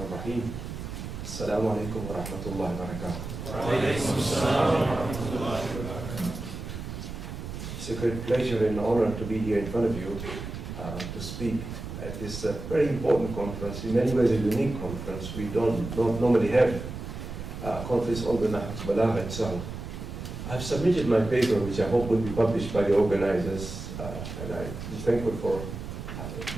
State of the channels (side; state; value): right; noise; rumble, 8 dB below the sound